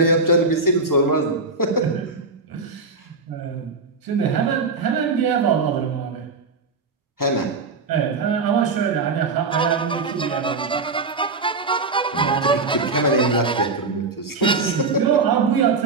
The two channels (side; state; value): left; quieter; 4.0 dB